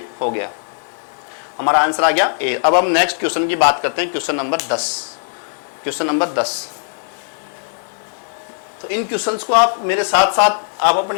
हो गया, हमारा आंसर आ गया ए। अब हम नेक्स्ट क्वेश्चन की बात करते हैं, क्वेश्चन नंबर 10। क्वेश्चन नंबर 10, तो इन क्वेश्चंस को आप मेरे साथ साथ आप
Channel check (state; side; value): silent; right; 65 dB below the other